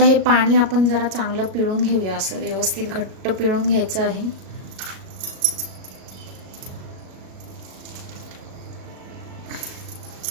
हे पाणी आपण जरा चांगलं पिळून घेऊया, असं व्यवस्थित घट्ट पिळून घ्यायचं आहे।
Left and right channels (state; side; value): late; left; 38 ms